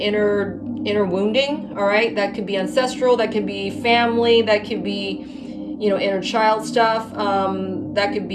inner wounding, all right? That could be ancestral, that could be family, that could be, you know, inner child stuff, that could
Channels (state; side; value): identical; both; correlation 1.00